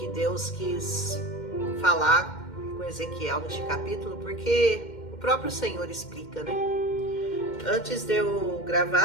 Deus quis falar com Ezequiel neste capítulo, porque o próprio Senhor explica, né? Antes de eu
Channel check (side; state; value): right; late; 2.1 ms